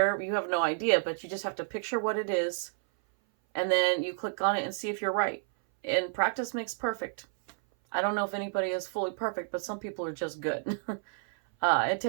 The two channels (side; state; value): left; silent; 58 dB below the other